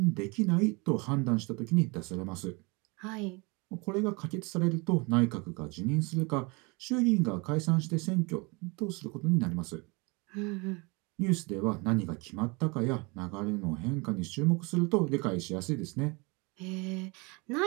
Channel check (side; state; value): left; quieter; 28.4 dB